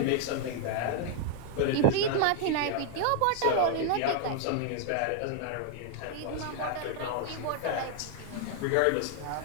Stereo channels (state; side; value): different; both; correlation 0.00